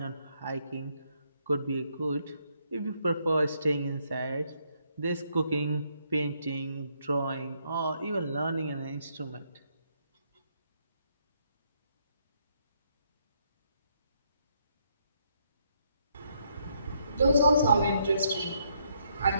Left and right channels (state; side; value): inverted; both; correlation -0.74